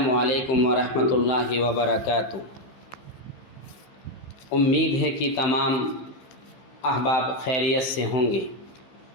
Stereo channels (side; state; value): right; late; 15 ms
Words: علیکم ورحمۃ اللہ وبرکاتہ۔ امید ہے کہ تمام احباب خیریت سے ہوں گے۔